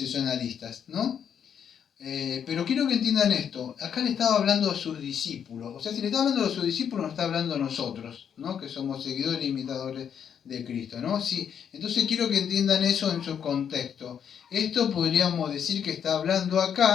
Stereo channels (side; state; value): right; quieter; 8.2 dB